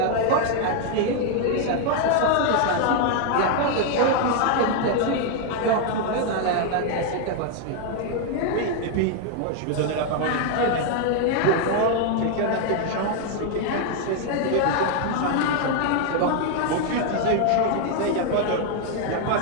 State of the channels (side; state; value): both; different; correlation 0.00